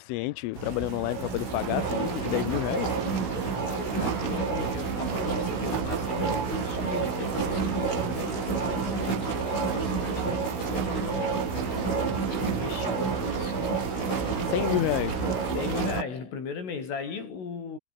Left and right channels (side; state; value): right; late; 16 ms